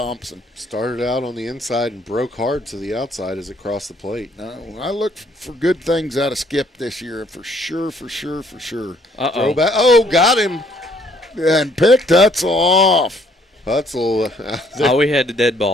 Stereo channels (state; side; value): normal; both; correlation 0.64